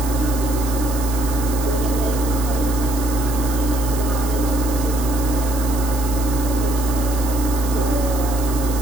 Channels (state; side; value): noise; right; hiss, 11 dB below the sound